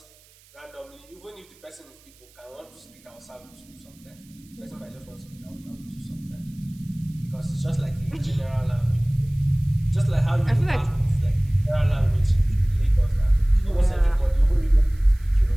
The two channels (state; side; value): noise; right; hiss, 28 dB below the sound